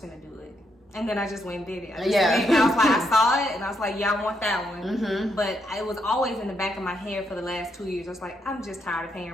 gonna do it. And then I just went and did it. I was like, I saw it, and I was like, yeah, I want that one. Mm-hmm. But it was always in the back of my head for the last 2 years. I was like, I'm just tired of paying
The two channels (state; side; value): normal; both; correlation 0.78